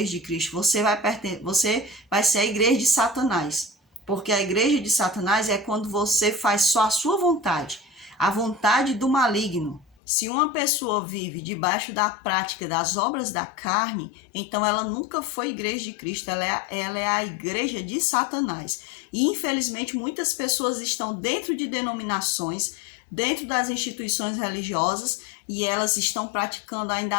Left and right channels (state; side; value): drops out; right; at 10.0 s